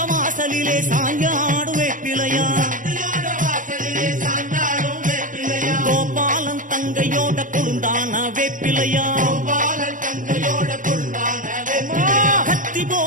வாசலிலே சாஞ்சாடு வேப்பிலையா கோபாலன் தங்கையோட கொழுந்தான வேப்பிலையா கத்தி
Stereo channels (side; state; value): left; late; 0.38 ms